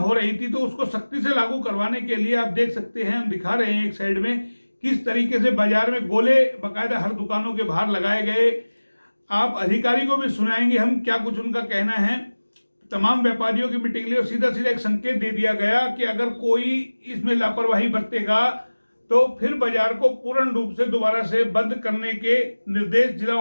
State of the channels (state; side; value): inverted; both; correlation -1.00